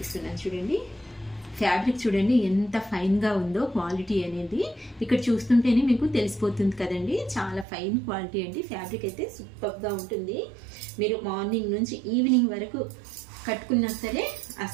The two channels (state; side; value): drops out; left; at 7.7 s